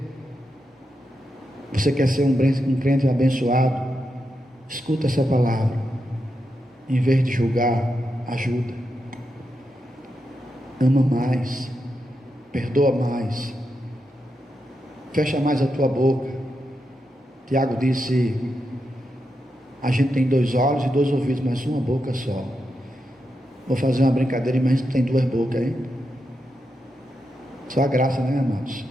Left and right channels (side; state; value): both; normal; correlation 0.86